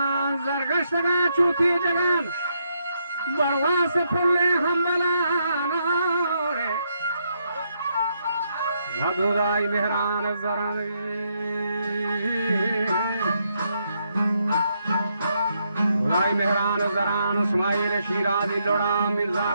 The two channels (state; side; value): inverted; both; correlation -0.78